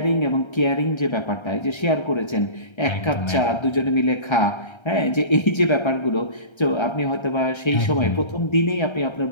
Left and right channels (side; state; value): right; late; 1.3 ms